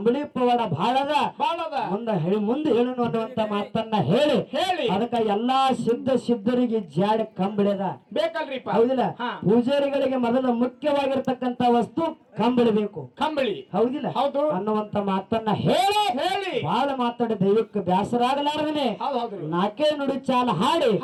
ಪವಾಡ ಬಹಳದ. ಮುಂದೆ ಹೇಳೋಣ ಅನ್ನುವಂತ ಮಾತನ್ನ ಹೇಳಿ ಅದಕ್ಕ ಎಲ್ಲಾ ಸಿದ್ಧರಿಗೆ ಜಾಡಿ ಕಂಬಳಿದ ಬೇಕಲ್ರಿಪ್ಪ. ಹೌದಿಲ್ಲ. ಪೂಜಾರಿಗಳಿಗೆ ಮೊದಲು ಮುಖ್ಯವಾಗಿರ್ತಕ್ಕಂತ ವಸ್ತು ಕಂಬಳಿ ಬೇಕು. ಹೌದಿಲ್ಲ. ಅನ್ನುವಂತ ಮಾತನ್ನ ಹೇಳಿ ಬಹಳ ಮಾತಾಡಿ ದೈವಕ್ಕೆ ಬ್ಯಾಸರಾಗಲಾರದನೆ 4 ನುಡಿ ಚಾಲ ಹಾಡಿ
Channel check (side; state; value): both; identical; correlation 1.00